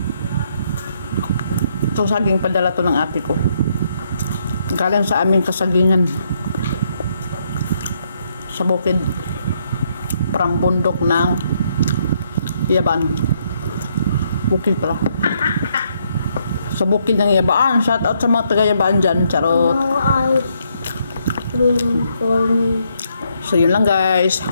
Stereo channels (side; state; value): both; inverted; correlation -0.73